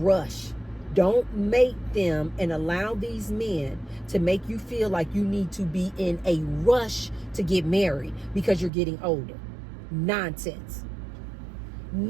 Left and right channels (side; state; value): left; drops out; at 8.7 s